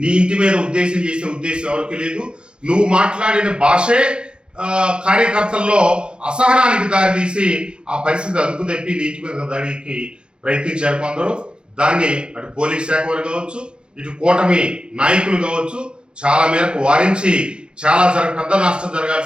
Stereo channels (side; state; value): left; late; 0.052 ms